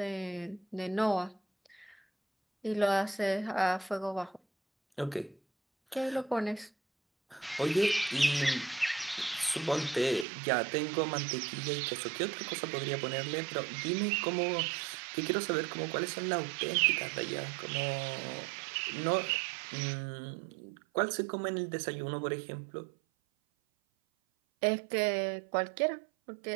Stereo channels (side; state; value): left; drops out; at 10.2 s